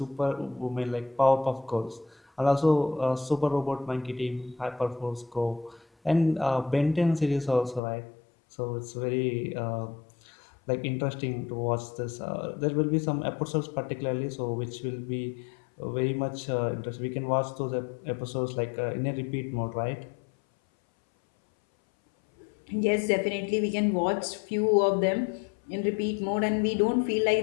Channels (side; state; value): right; drops out; at 7.8 s